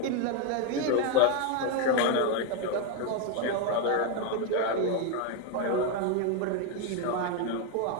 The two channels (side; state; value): both; different; correlation 0.01